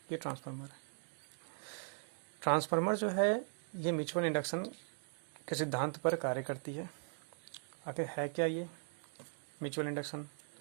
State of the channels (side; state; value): left; silent; 52 dB below the other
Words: ये ट्रांसफार्मर है। ट्रांसफार्मर जो है ये म्यूचुअल इंडक्शन के सिद्धांत पर कार्य करती है। आखिर है क्या ये म्यूचुअल इंडक्शन?